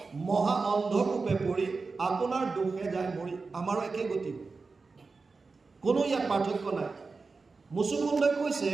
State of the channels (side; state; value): left; quieter; 4.2 dB